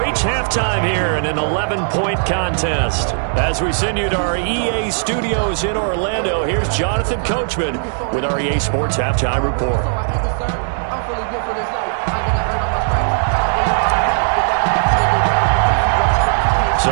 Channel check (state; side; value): silent; left; digital silence